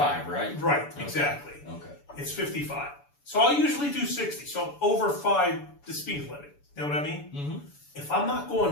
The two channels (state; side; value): late; right; 7.0 ms